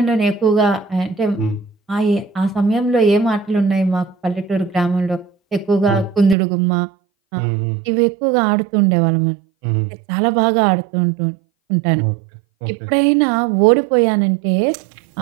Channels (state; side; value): drops out; left; at 6.4 s